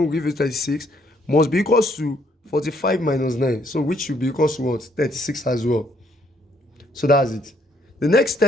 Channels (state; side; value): normal; both; correlation 0.69